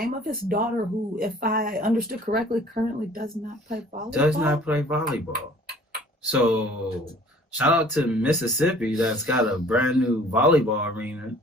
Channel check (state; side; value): normal; both; correlation 0.52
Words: of his daughter, who, if I understood correctly, currently does not play volleyball. So shout out to Mississippi that's got a brand new volleyball arena.